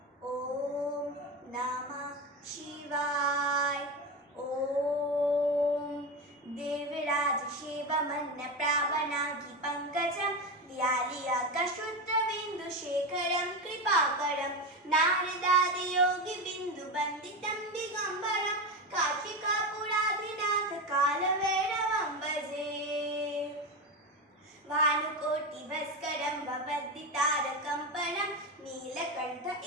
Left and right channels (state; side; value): normal; both; correlation 0.18